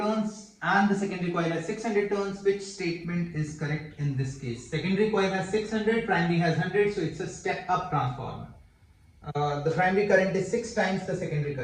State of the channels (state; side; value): identical; both; correlation 1.00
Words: and the secondary coil has 600 turns. Which statement is correct in this case? Secondary coil has 600, primary has 100, so it's a step up transformer. The primary current is 6 times the secondary